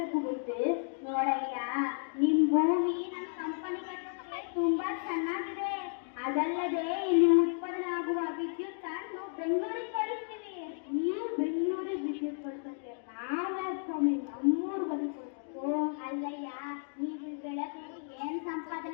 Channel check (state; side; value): silent; right; 56 dB below the other